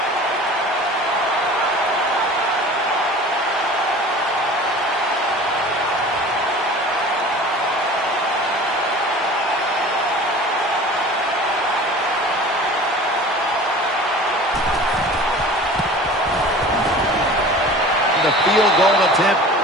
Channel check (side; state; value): both; normal; correlation 0.41